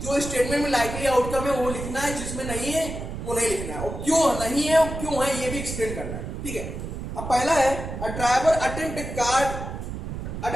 जो स्टेटमेंट में लाइकली आउटकम है वो लिखना है, जिसमें नहीं है वो नहीं लिखना है, और क्यों नहीं है और क्यों है ये भी एक्सप्लेन करना है, ठीक है। अब पहला है a driver attempt to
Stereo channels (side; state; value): right; noise; rumble, 7 dB below the sound